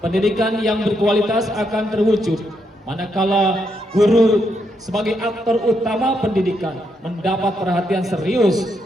yang berkualitas akan terwujud manakala guru sebagai aktor utama pendidikan mendapat perhatian serius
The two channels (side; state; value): both; normal; correlation 0.79